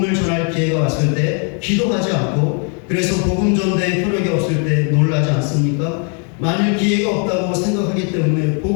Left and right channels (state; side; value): quieter; right; 39.3 dB